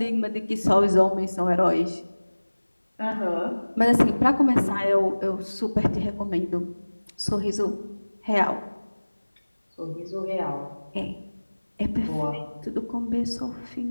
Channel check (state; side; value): inverted; both; correlation -1.00